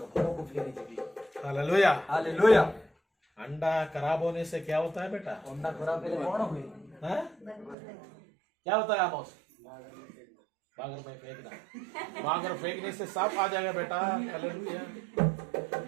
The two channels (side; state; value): left; drops out; at 7.8 s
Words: ଘରକୁ ଫେରିଯିବି हालेलुया। ହାଲେଲୁୟା अंडा खराब होने से क्या होता है बेटा। ଅଣ୍ଡା ଖରାପ ହେଲେ କଣ ହୁଏ हैं? क्या होता है आमोस। बागर में फेंकना, बागर फेंकने से सांप आ जाएगा बेटा। हालेलुया।